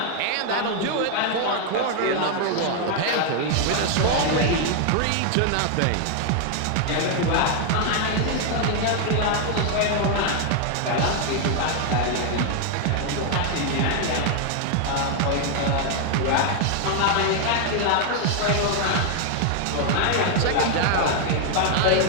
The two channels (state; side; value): different; both; correlation 0.00